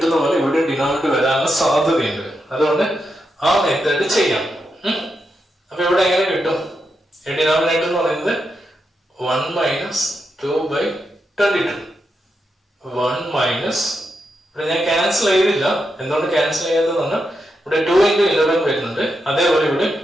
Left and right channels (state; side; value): normal; both; correlation 0.85